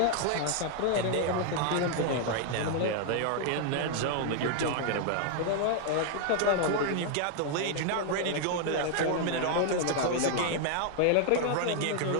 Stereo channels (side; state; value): both; different; correlation 0.00